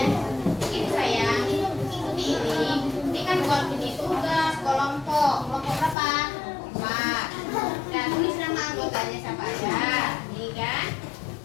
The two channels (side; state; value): right; drops out; at 6.0 s